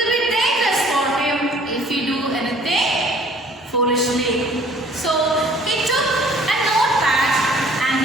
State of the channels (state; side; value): normal; both; correlation 0.55